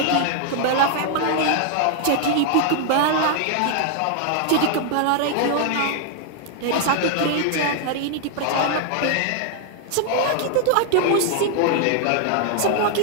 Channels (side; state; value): both; different; correlation 0.00